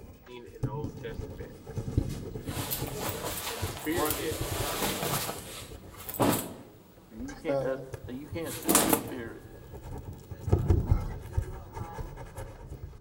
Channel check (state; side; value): identical; both; correlation 1.00